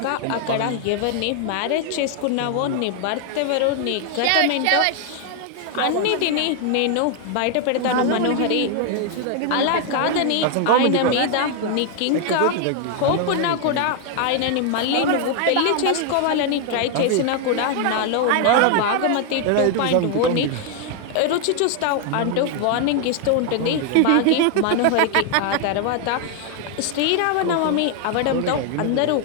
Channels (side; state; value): both; different; correlation 0.00